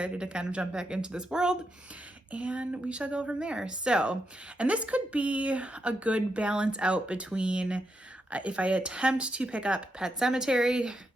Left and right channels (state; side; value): normal; both; correlation 0.83